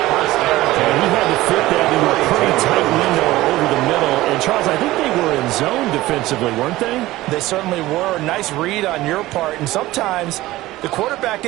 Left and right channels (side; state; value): left; quieter; 17.3 dB